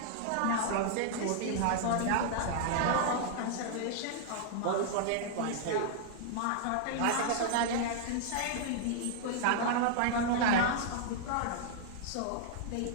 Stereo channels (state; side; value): different; both; correlation -0.01